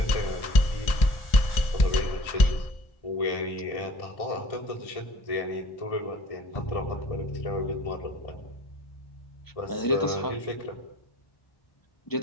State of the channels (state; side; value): late; right; 1.6 ms